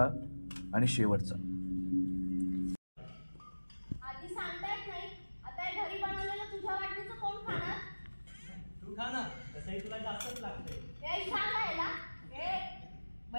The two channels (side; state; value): both; inverted; correlation -1.00